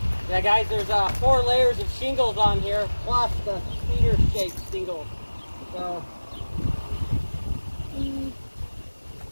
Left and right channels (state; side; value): inverted; both; correlation -1.00